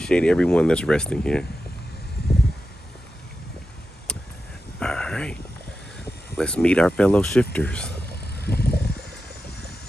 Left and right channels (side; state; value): both; normal; correlation 0.91